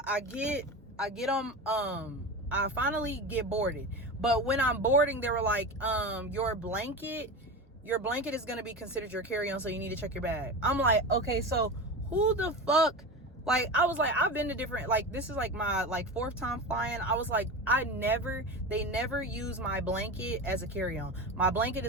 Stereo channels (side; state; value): both; normal; correlation 0.26